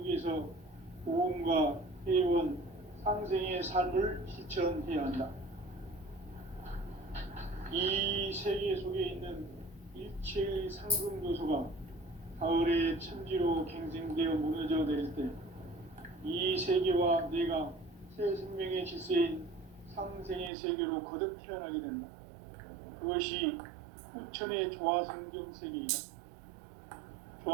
위해서 고음과 회원, 상생의 삶을 실천해야 한다. 이 세계 속에 있는 일체의 상금 요소가 가을의 천지로 갱생되어 무너져 내릴 때 이 세계와 내가 새 생명의 질서인 상생의 세계로 거듭 태어나게 된다. 그것이 후천의 조화성경 세계이다.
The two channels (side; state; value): left; drops out; at 20.5 s